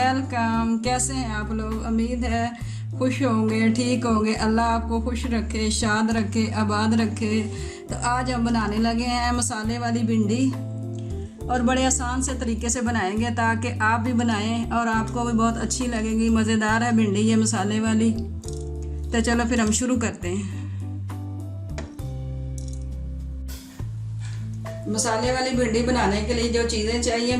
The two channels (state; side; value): identical; both; correlation 1.00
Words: कैसे हैं आप लोग? उम्मीद है खुश होंगे, ठीक होंगे। अल्लाह आपको खुश रखे, शाद रखे, आबाद रखे। तो आज हम बनाने लगे हैं मसाले वाली भिंडी, और बड़े आसान से तरीके से बनाएंगे ताकि आप भी बनाएं और आपको भी बहुत अच्छी लगेगी। मज़ेदार है भिंडी ये मसाले वाली। तो चलो फिर हम शुरू करते हैं। मसाले वाली भिंडी बनाने के लिए जो चीज़ें चाहिए,